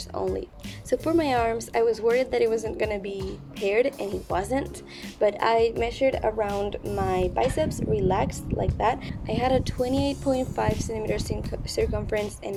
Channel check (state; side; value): identical; both; correlation 1.00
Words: only. So for my arms, I was worried that it wasn't gonna be paired, and it wasn't, but I measured around my biceps, relaxed like that. I had a 28.5 centimeter circumference